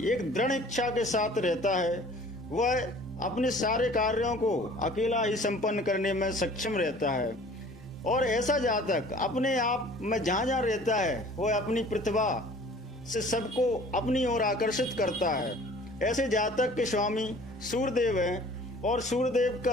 एक दृढ़ इच्छा के साथ रहता है। वह अपने सारे कार्यों को अकेला ही संपन्न करने में सक्षम रहता है और ऐसा जातक अपने आप में जहाँ जहाँ रहता है वह अपनी प्रतिभा से सबको अपनी ओर आकर्षित करता है। ऐसे जातक के स्वामी सूर्यदेव हैं और सूर्यदेव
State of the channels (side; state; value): both; normal; correlation 0.49